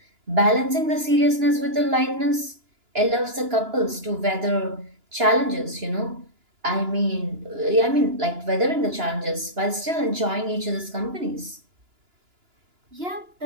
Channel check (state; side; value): late; left; 2.9 ms